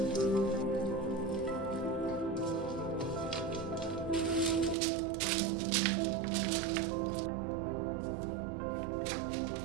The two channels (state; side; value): drops out; left; at 4.8 s